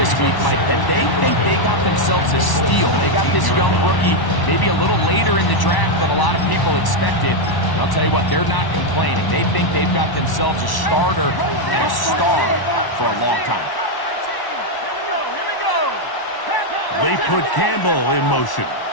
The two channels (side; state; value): right; late; 1.1 ms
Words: week, Mike, that they think they got themselves a steal. They got this young rookie maybe a little later in the draft than a lot of people expected. And I'll tell you what, they're not complaining. They think they've got themselves a starter and a star for a long time. They put Campbell in motion.